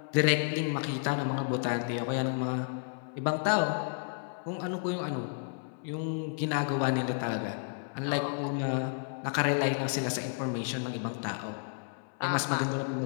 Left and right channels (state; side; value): silent; right; 56 dB below the other